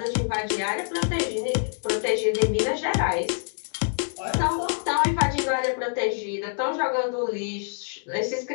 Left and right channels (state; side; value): silent; right; digital silence